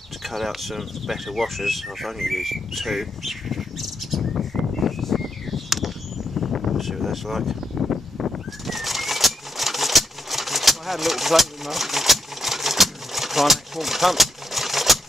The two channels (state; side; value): normal; both; correlation 0.82